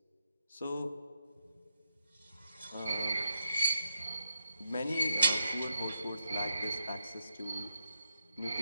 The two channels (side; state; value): both; inverted; correlation -0.83